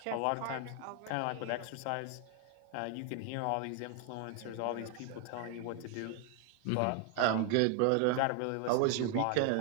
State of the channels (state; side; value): different; both; correlation 0.00